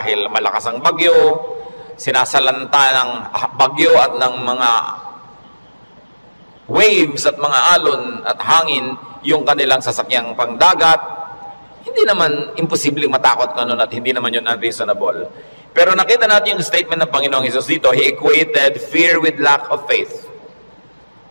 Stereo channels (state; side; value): inverted; both; correlation -1.00